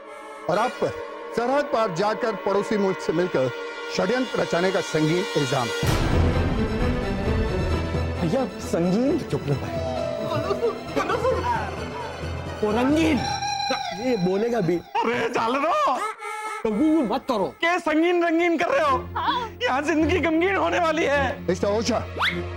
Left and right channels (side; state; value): both; identical; correlation 1.00